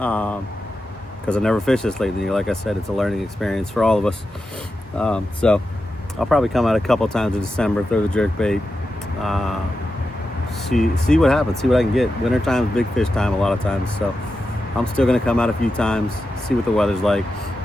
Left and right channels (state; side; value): normal; both; correlation 0.90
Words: I never fished this late in the year. Like I said, it's a learning experience for all of us. So I'll probably come out a couple times in December, throw the jerk bait, see what happens, see what I can get. Winter time is big fish time a lot of times, so I'm still gonna come out a few times, see what the weather's like.